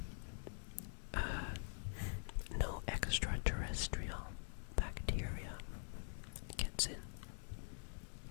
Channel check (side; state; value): right; silent; digital silence